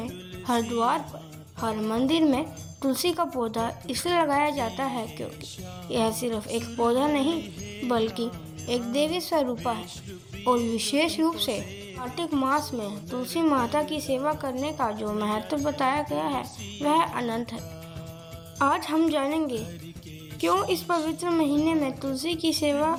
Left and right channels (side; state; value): both; identical; correlation 1.00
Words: हर द्वार पर, हर मंदिर में तुलसी का पौधा इसलिए लगाया जाता है क्योंकि यह सिर्फ एक पौधा नहीं बल्कि एक देवी स्वरूपा है और विशेष रूप से कार्तिक मास में तुलसी माता की सेवा करने का जो महत्व बताया गया है वह अनंत है। आज हम जानेंगे क्यों इस पवित्र महीने में तुलसी की सेवा